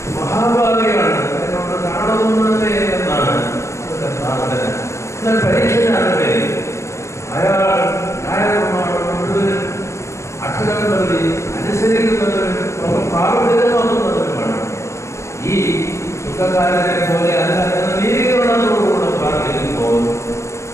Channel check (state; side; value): late; right; 0.14 ms